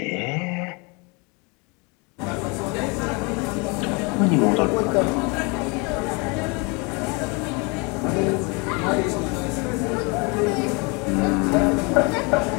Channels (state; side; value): quieter; right; 29.9 dB